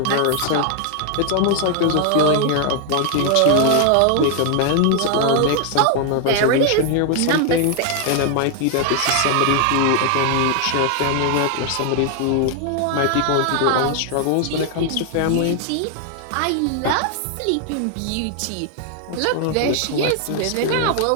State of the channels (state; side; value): different; both; correlation 0.00